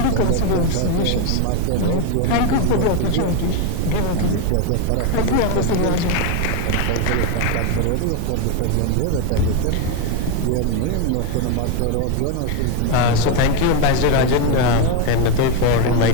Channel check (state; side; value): different; both; correlation 0.02